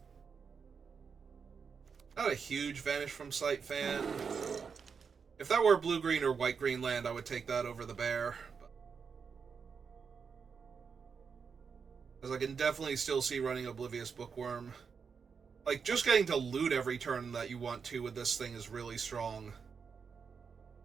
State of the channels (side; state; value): left; quieter; 5.9 dB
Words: Not a huge Vanish from Sight fan. If that were blue-green or white-green land, I would take that over the bear. Because I can definitely still see running Oblivious Bookworm. Like, just getting to loot every turn that you want to with this thing is really strong.